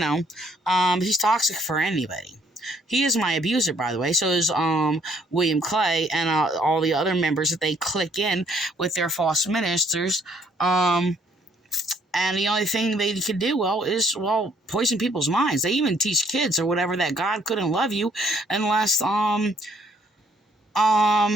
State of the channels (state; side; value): normal; both; correlation 0.65